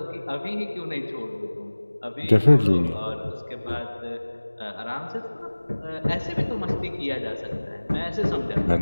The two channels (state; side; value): inverted; both; correlation -1.00